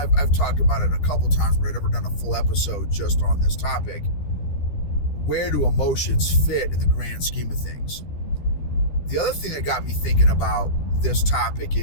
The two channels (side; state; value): right; late; 13 ms